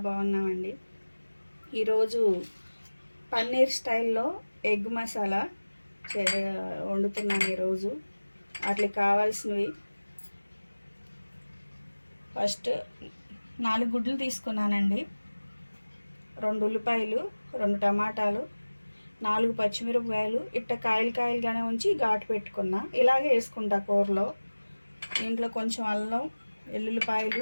బాగున్నామండి. ఈరోజు పన్నీర్ స్టైల్లో ఎగ్ మసాలా వండుతున్నాను. ఈరోజు వాటికి కావాల్సినవి ఫస్ట్ 4 గుడ్లు తీసుకున్నానండి, 2 ఉల్లిపాయలు, 2 టమాటాలు, 4 పచ్చిమిరపకాయలు. ఇట్ట కాయలుగానే ఉంచి ఘాటు పెట్టుకున్నా. ఇలాగే వేసుకుంటా కూరలో. దీంట్లో కొంచెం అల్లం,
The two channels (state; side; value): inverted; both; correlation -1.00